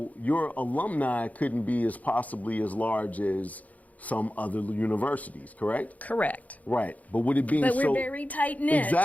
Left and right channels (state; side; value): late; right; 0.074 ms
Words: your alumni couldn't be as possibly as large as some other universities, correct? Correct. Right. But with it being but we're very tight-knit.